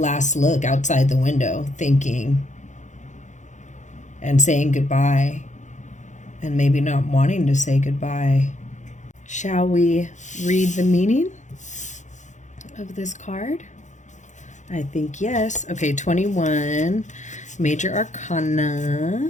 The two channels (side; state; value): right; late; 0.35 ms